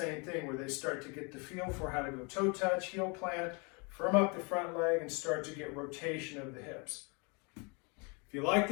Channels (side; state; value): right; quieter; 31.7 dB